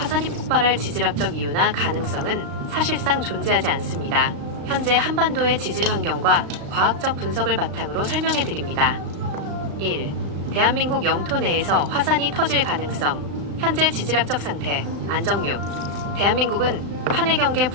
폭발할 지질학적 이유나 가능성은 사실상 존재하지 않습니다. 현재 한반도의 지질 환경과 과학적 분석을 바탕으로 설명해 드립니다. 1. 대한민국 영토 내에서 화산이 터질 가능성. 현재 지질학적 상태, 안정륙. 대한민국은 판의 경계,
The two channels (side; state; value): left; late; 34 ms